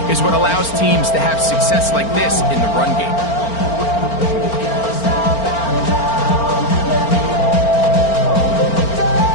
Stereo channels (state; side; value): late; right; 4.4 ms